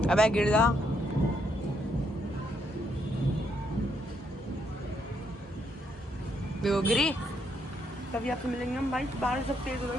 अबे गिर जा। गिरी। तभी आपसे मिलेंगे हम भाई। बारिश जब तेज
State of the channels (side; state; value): both; normal; correlation 0.75